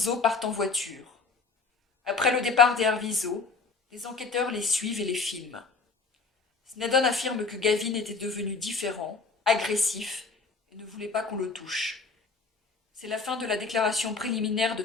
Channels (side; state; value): right; quieter; 4.4 dB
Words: partent en voiture. Après le départ des Arvizo, les enquêteurs les suivent et les filment. Snedden affirme que Gavin était devenu différent, agressif et ne voulait pas qu'on le touche. C'est la fin de la déclaration préliminaire de